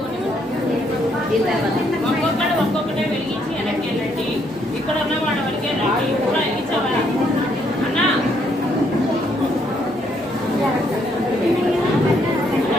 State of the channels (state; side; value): normal; both; correlation 0.71